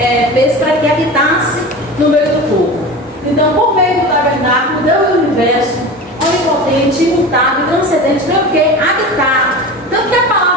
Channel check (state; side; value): normal; both; correlation 0.31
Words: fez para que habitasse no meio do povo. Então, por meio do tabernáculo, Deus do universo, onipotente, imutável, transcendente, veio o quê? Habitar. Tanto que a